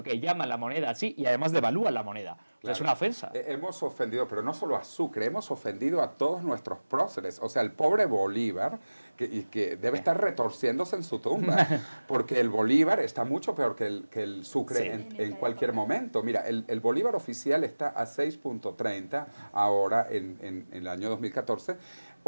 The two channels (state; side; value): inverted; both; correlation -1.00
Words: que llaman la moneda así y además devalúan la moneda. Claro. O sea, es una ofensa. Hemos ofendido, pero no solo a Sucre, hemos ofendido a todos nuestros próceres. O sea, el pobre Bolívar, que debe estar retorciéndose en su tumba, porque el Bolívar está mucho peor que el Sucre en cualquier momento. Mira, el Bolívar oficial está a 6.30 ahora en el año 2014,